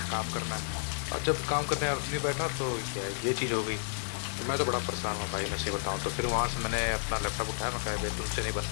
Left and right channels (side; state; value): right; silent; digital silence